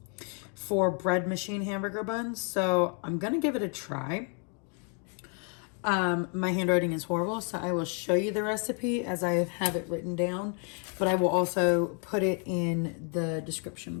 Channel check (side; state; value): right; quieter; 39.5 dB